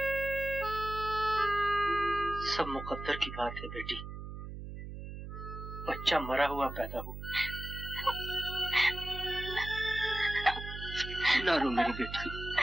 सब मुकद्दर की बात है बेटी। बच्चा मरा हुआ पैदा हो। ना रो मेरी बेटी,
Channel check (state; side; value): noise; right; hum, 9 dB below the sound